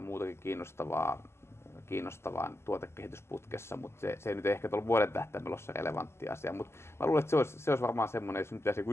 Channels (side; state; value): right; late; 0.12 ms